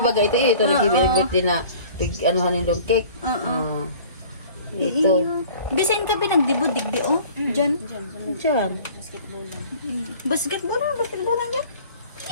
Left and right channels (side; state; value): both; inverted; correlation -0.47